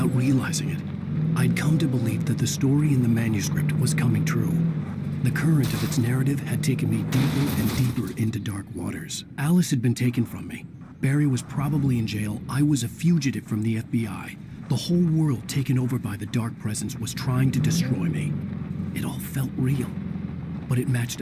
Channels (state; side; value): identical; both; correlation 1.00